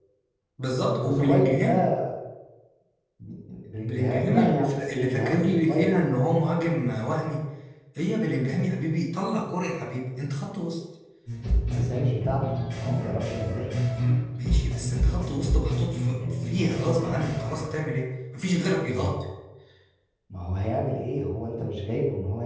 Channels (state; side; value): identical; both; correlation 1.00